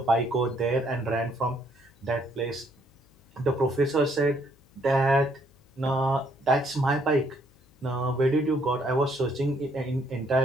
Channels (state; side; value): noise; left; hum, 30 dB below the sound